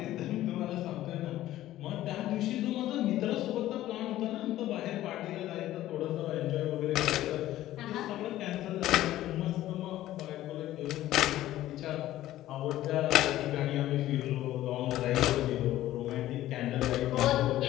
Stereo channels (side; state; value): right; quieter; 14.3 dB